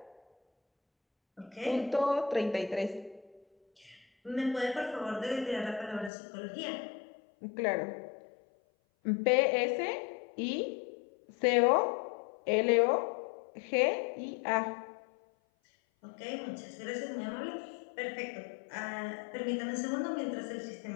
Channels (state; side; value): drops out; right; at 6.1 s